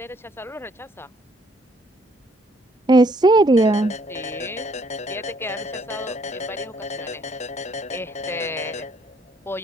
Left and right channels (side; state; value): both; normal; correlation 0.66